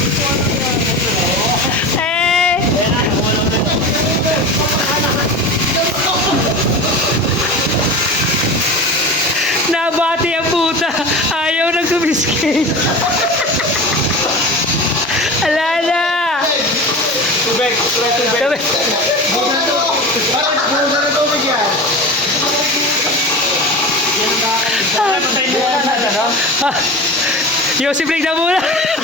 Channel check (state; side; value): normal; both; correlation 0.30